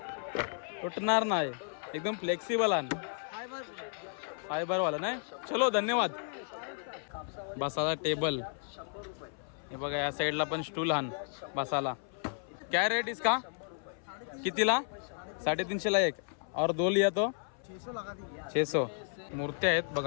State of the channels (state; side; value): silent; right; 55 dB below the other